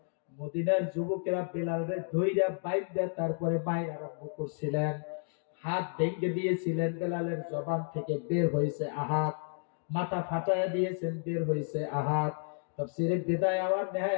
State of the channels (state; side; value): silent; right; 57 dB below the other